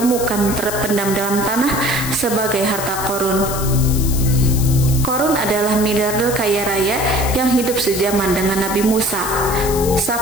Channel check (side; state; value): left; noise; hiss, 7 dB below the sound